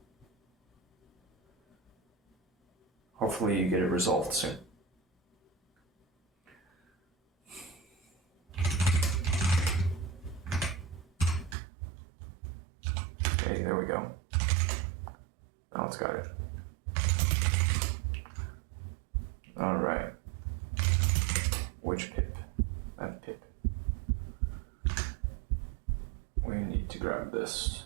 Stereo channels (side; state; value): left; drops out; at 11.6 s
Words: Hopefully you get it resolved soon. Okay, there we go. Now it's got it. Alright. Which pip? That pip. We need to grab